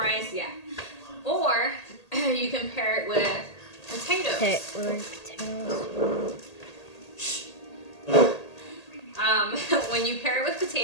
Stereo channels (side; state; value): right; late; 1.8 ms